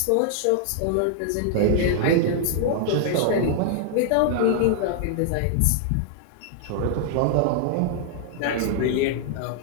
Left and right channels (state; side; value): different; both; correlation -0.01